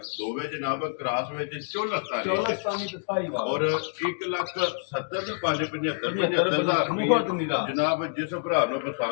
ਦੋਵੇਂ ਜਨਾਬ ਕ੍ਰਾਸ ਵਿੱਚ ਚੋਲਸਤਾਨੀ ਚੌਲਸਤਾਨੀ ਤੇ ਸਾਈ ਵਾਲਾ ਔਰ 1,70,575 ਬਹੁਤ ਨਿਰਾ। ਜਨਾਬ ਜਿਸ ਭਰਾ ਨੂੰ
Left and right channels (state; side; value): silent; right; digital silence